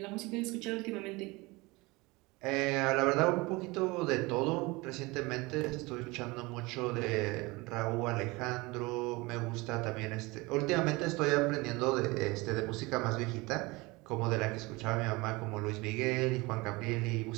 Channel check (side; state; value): left; quieter; 23.7 dB